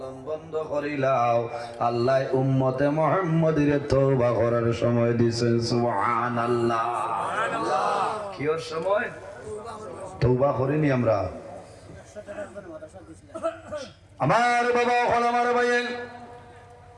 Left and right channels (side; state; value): both; identical; correlation 1.00